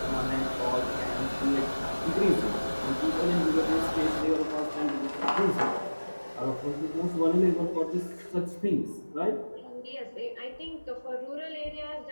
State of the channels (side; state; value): both; inverted; correlation -1.00